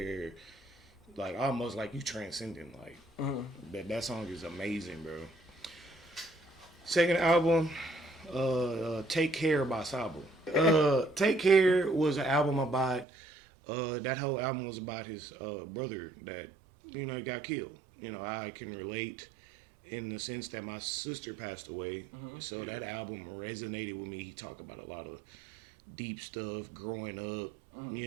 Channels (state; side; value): drops out; left; at 13.1 s